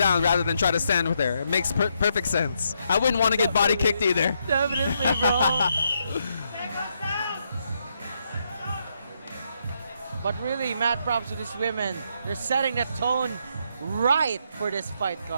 rather than try to stand with her. It makes perfect sense. I wouldn't want to get body kicked either. Definitely, bro. But really, mad props to these women. They're setting the tone right for this fight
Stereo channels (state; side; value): inverted; both; correlation -0.78